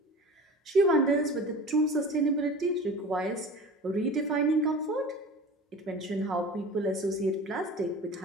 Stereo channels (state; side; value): normal; both; correlation 0.37